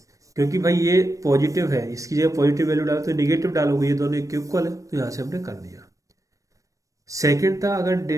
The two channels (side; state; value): left; late; 0.16 ms